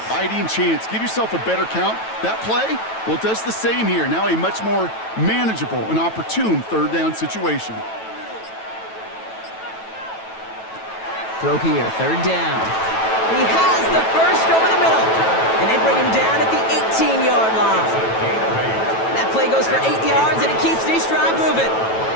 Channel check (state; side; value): late; right; 9.1 ms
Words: chance. Give yourself a better count. That play, well, it does the same here. Now a much more manageable and opportune 3rd down situation. Throw here, third down. He has the first over the middle. And they bring him down at the 18-yard line. That play goes for 8 yards, and it keeps the East drive moving.